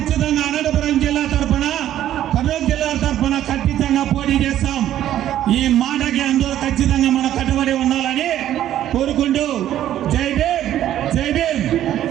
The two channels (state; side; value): quieter; left; 12.0 dB